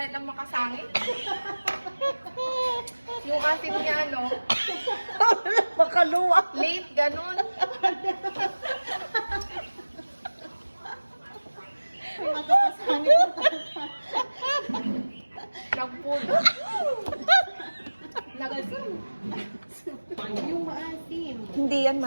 ng makasangit. Yung asim niya, no? Makaluwa. Late, ganun. Nagpulo. Nagasim. Yung maasim. Hindi yan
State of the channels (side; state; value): both; inverted; correlation -1.00